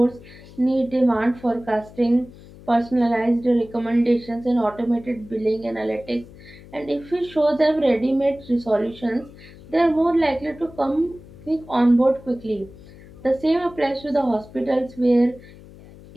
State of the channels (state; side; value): noise; left; hum, 20 dB below the sound